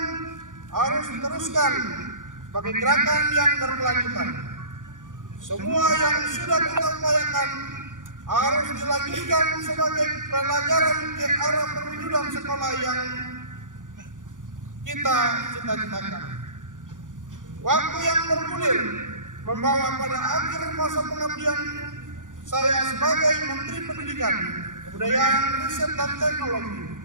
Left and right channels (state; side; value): late; left; 0.88 ms